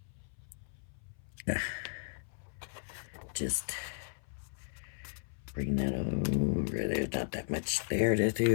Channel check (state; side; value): silent; right; 54 dB below the other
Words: just bring that over. There's not that much there to